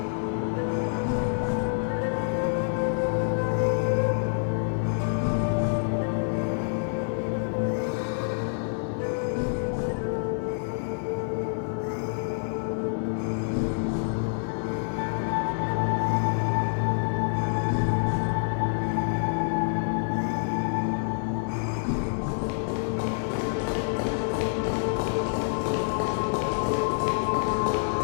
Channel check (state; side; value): silent; right; digital silence